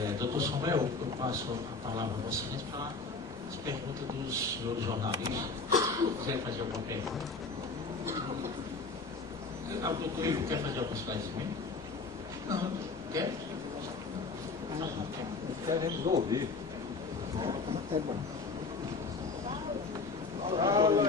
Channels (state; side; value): quieter; right; 4.0 dB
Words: Doutor Samuel, eu passo a palavra a você para as perguntas dos senhores jornalistas. Quiser fazer alguma pergunta? O doutor Ivo quer fazer algum esclarecimento? Não, quer? Não. Queremos ouvir. Tá bom.